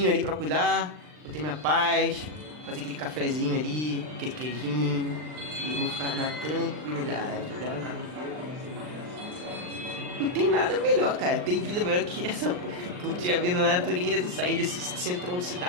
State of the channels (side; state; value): left; late; 39 ms